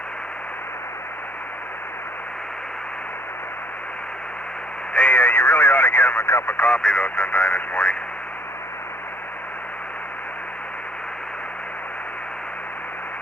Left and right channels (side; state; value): both; normal; correlation 0.62